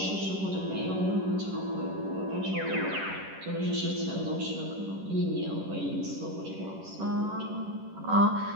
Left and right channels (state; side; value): late; left; 11 ms